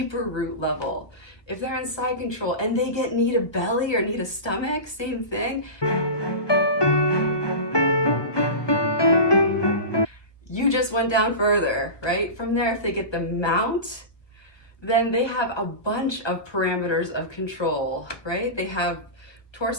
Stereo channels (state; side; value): late; right; 1.2 ms